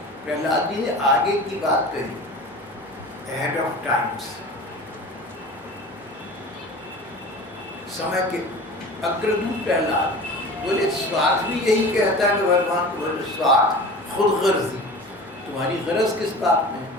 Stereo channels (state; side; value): normal; both; correlation 0.37